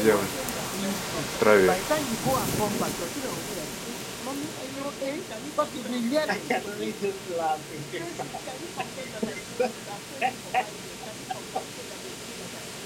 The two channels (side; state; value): both; identical; correlation 1.00